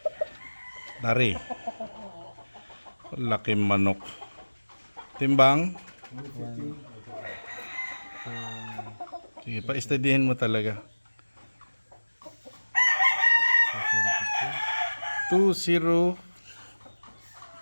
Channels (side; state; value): both; inverted; correlation -1.00